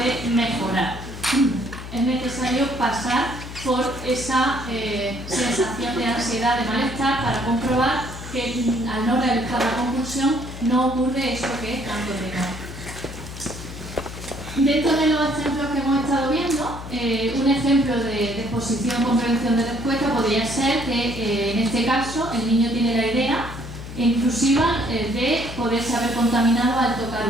mejorar. Es necesario pasar por esa sensación de ansiedad, de malestar, para comprobar que al no realizar la compulsión no ocurre eso que es tanto temor. Dentro de los ejemplos que hemos estado viendo, un ejemplo de exposición con prevención de respuesta podría ser que en este caso el niño tiene la idea intrusiva de poderse haber contaminado al tocar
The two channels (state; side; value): noise; left; hum, 11 dB below the sound